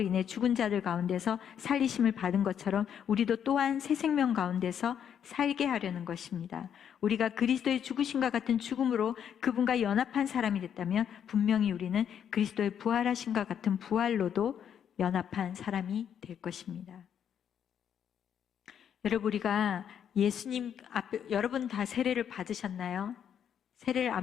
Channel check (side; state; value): right; quieter; 8.7 dB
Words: 인해 죽은 자들 가운데서 살리심을 받은 것처럼 우리도 또한 새 생명 가운데서 살게 하려는 것입니다. 우리가 그리스도의 죽으심과 같은 죽음으로 그분과 연합한 사람이 됐다면 분명히 우리는 그리스도의 부활하심과 같은 부활로도 연합한 사람이 될 것입니다. 여러분, 우리가 예수님 앞에, 여러분 다 세례를 받으셨나요? 세례를